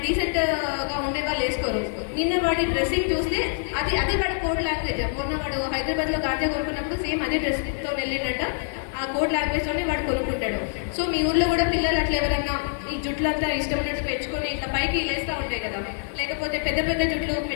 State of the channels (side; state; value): right; silent; 62 dB below the other